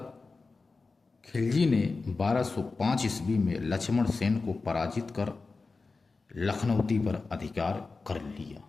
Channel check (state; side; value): quieter; right; 4.0 dB